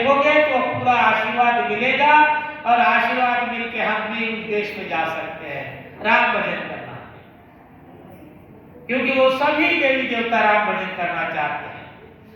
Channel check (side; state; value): both; identical; correlation 1.00